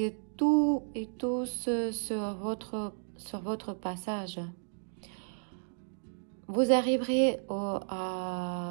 tout et tous sur votre passage. Vous arriverez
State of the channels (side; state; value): left; silent; digital silence